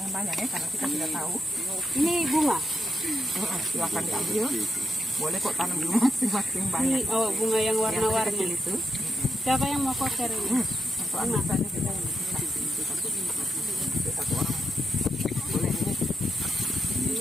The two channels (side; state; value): both; normal; correlation 0.84